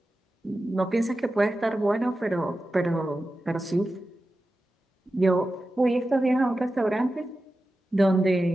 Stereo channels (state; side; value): normal; both; correlation 0.93